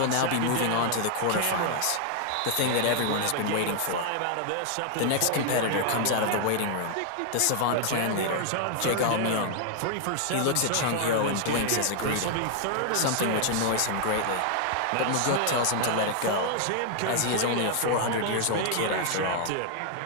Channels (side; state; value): both; different; correlation 0.00